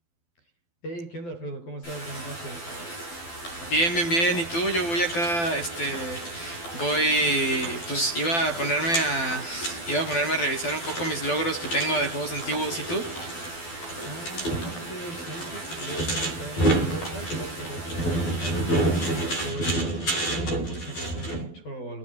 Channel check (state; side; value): late; right; 12 ms